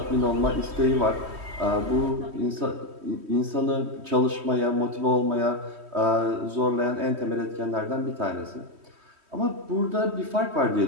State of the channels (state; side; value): late; left; 3.1 ms